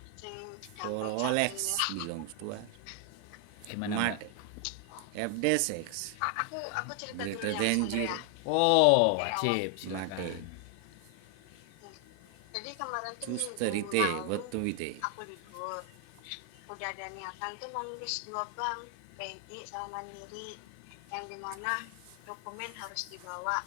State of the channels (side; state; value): both; different; correlation 0.00